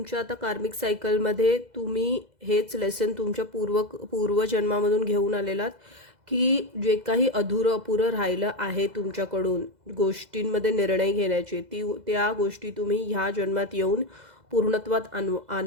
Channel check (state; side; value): late; left; 2.0 ms